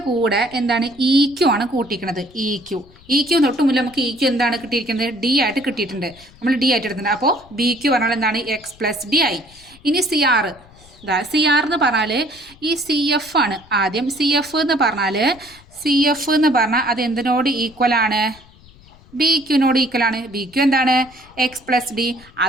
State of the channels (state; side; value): noise; left; rumble, 25 dB below the sound